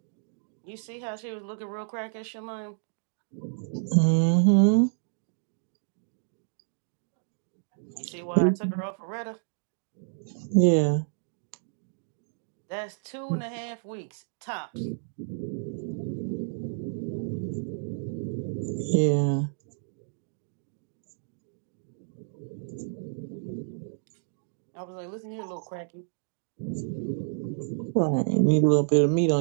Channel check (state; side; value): silent; left; digital silence